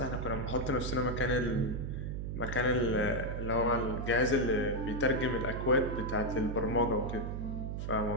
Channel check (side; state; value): right; noise; hum, 4 dB below the sound